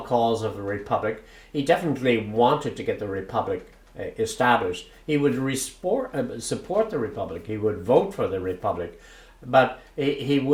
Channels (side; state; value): both; identical; correlation 1.00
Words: cause of the Republic. He definitely wanted to get the Republic established. He would support the Republic. He would vote for the Republic, but he